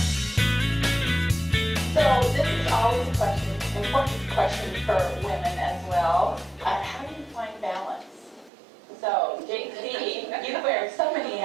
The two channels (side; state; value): left; drops out; at 8.5 s